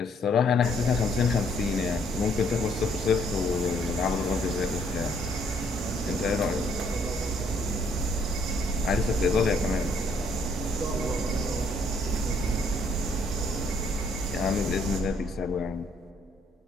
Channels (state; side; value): normal; both; correlation 0.67